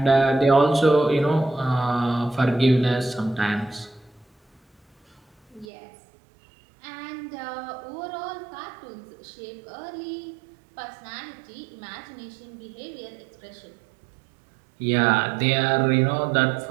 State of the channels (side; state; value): left; drops out; at 5.7 s